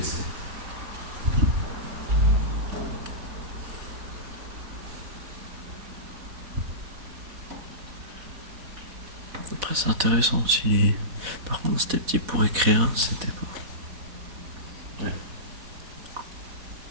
Après, c'est intéressant aussi. Par contre, c'était petit pour écrire, c'était pas.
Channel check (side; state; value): left; late; 4.1 ms